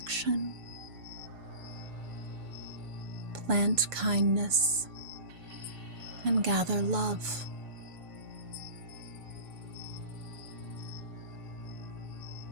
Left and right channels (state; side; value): late; left; 6.8 ms